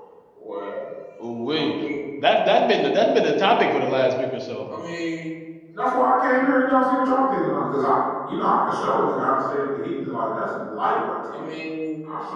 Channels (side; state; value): both; identical; correlation 1.00